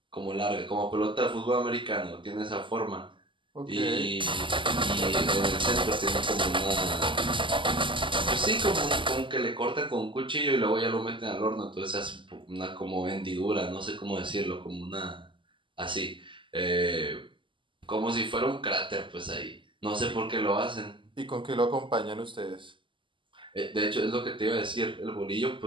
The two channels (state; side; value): late; left; 0.24 ms